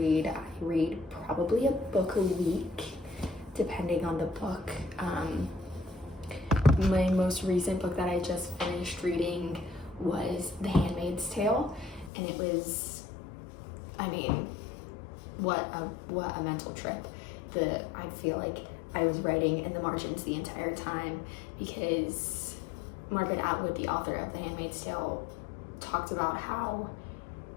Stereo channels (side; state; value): right; drops out; at 12.1 s